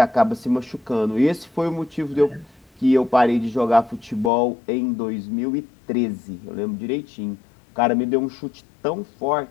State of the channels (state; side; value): drops out; right; at 4.3 s